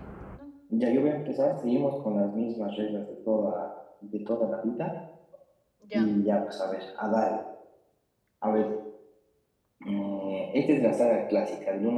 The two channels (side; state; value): both; identical; correlation 1.00